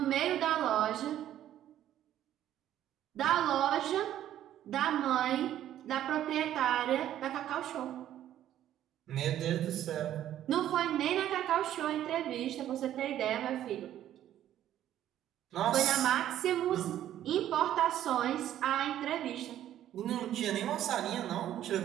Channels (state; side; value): quieter; left; 11.8 dB